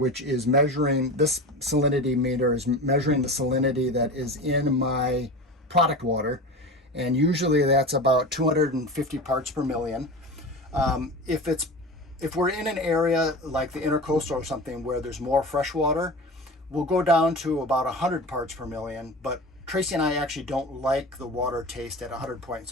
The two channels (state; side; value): normal; both; correlation 0.30